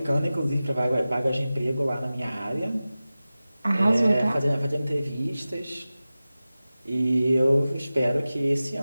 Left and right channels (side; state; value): both; inverted; correlation -0.96